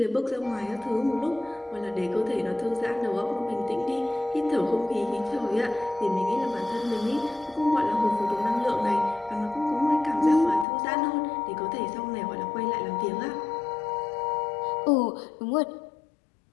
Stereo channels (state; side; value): drops out; right; at 10.7 s